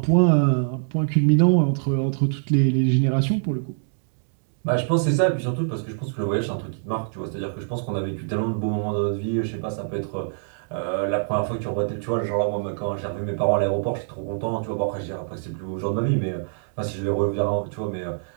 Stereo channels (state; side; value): silent; left; digital silence